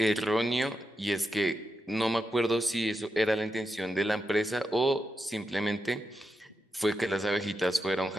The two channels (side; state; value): both; normal; correlation 0.86